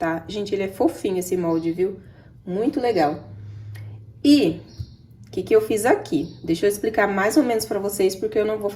Gente, ele é fofinho esse molde, viu? Muito legal. E o que eu fiz aqui? Deixa eu explicar mais ou menos pra vocês, porque eu não vou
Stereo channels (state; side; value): identical; both; correlation 1.00